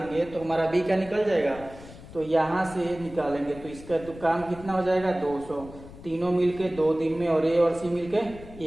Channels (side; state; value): left; noise; rumble, 17 dB below the sound